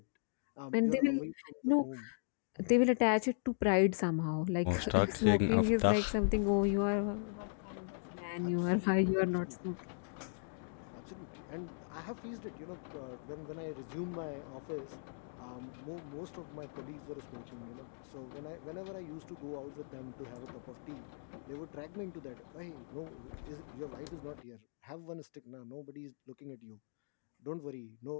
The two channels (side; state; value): right; silent; digital silence